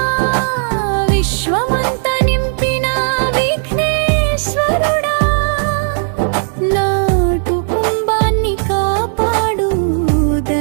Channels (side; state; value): left; silent; 65 dB below the other